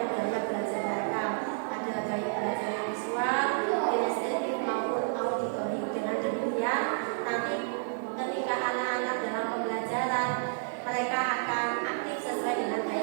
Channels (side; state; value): left; silent; 57 dB below the other